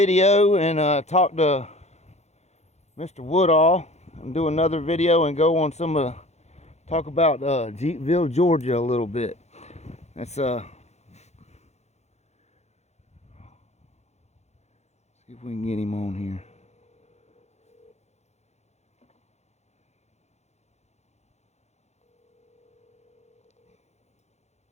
and talk to Mr. Woodall and do another video and go on talk about Jeepville, Georgia a little bit. Let's see if we can get him on here.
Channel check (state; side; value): late; right; 0.32 ms